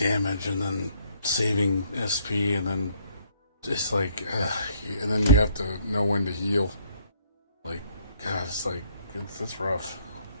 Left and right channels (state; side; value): inverted; both; correlation -0.66